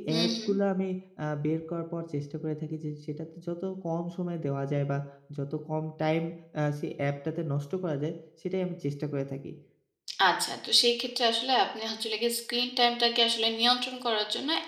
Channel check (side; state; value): both; identical; correlation 1.00